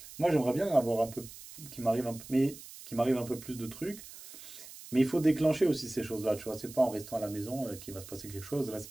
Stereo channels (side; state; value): right; noise; hiss, 15 dB below the sound